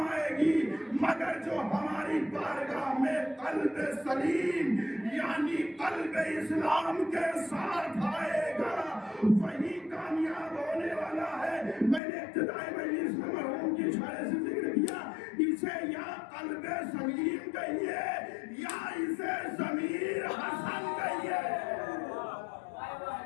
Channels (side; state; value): right; drops out; at 12.0 s